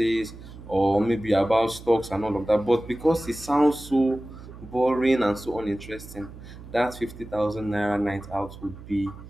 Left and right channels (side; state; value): right; noise; hum, 16 dB below the sound